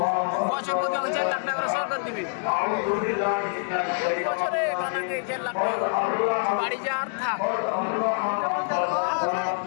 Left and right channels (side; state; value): right; silent; 61 dB below the other